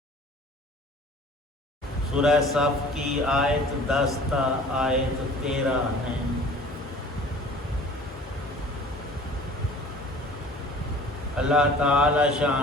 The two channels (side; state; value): both; normal; correlation 0.47